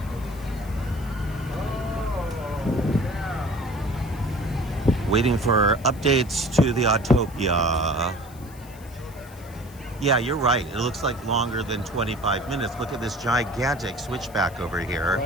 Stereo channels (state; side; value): noise; left; hiss, 22 dB below the sound